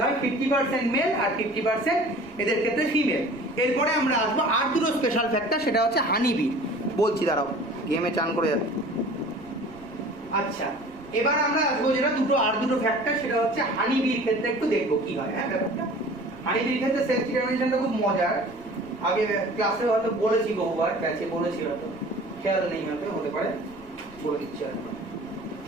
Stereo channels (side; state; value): right; noise; rumble, 24 dB below the sound